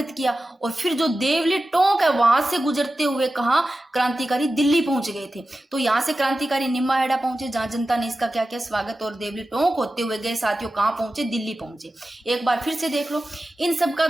किया। और फिर जो देवली टोंक है वहां से गुजरते हुए कहाँ क्रांतिकारी दिल्ली पहुंच गए थे। तो यहाँ से क्रांतिकारी निम्बाहेड़ा पहुंचे जहां जनता ने इसका क्या किया, स्वागत, और देवली टोंक होते हुए गए साथियों कहाँ पहुंचे, दिल्ली पहुंचे। एक बार फिर से देख लो इन सब का,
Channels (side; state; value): both; normal; correlation 0.94